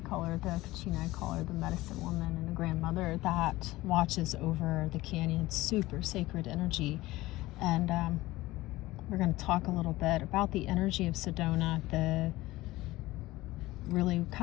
call her the Kachina, I call her the medicine woman and the grandmother that watches over the canyon. Super sacred energy. And we're going to talk a little bit about the energy of Sedona, really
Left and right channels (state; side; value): quieter; right; 18.4 dB